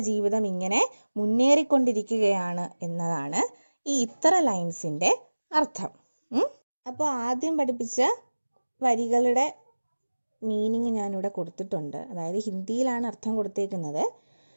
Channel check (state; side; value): inverted; both; correlation -1.00